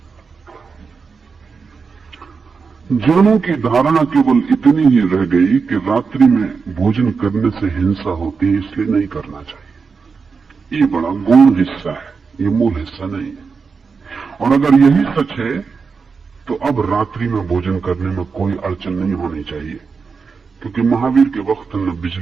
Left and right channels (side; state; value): left; quieter; 5.2 dB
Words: जनों की धारणा केवल इतनी ही रह गई कि रात्रि में भोजन करने से हिंसा होती है, इसलिए नहीं करना चाहिए। ये बड़ा गौण हिस्सा है, ये मूल हिस्सा नहीं है। और अगर यही सच है तो अब रात्रि में भोजन करने में कोई अड़चन नहीं होनी चाहिए, क्योंकि महावीर के वक्त न